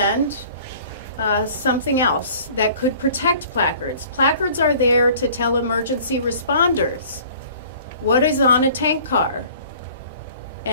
something else that could protect placards. Placards are there to tell emergency responders what is on a tank car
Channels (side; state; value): both; inverted; correlation -0.49